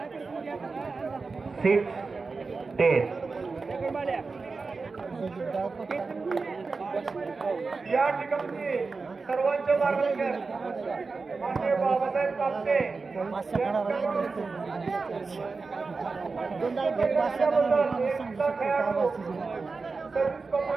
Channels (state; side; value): quieter; left; 4.2 dB